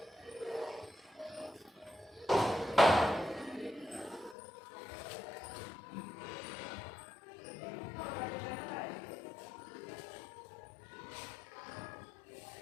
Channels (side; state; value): right; drops out; at 4.4 s